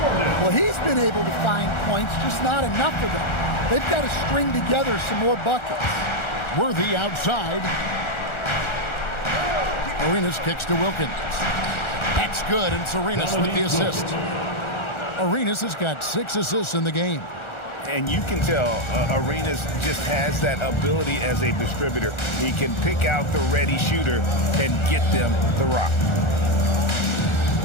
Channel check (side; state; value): right; late; 1.4 ms